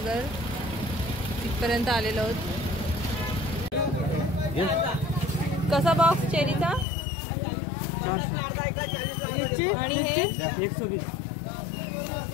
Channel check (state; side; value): drops out; right; at 6.9 s